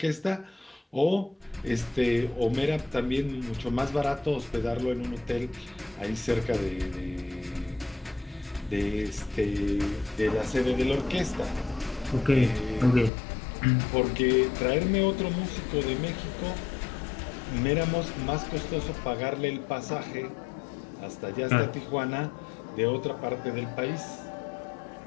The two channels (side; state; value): right; drops out; at 13.1 s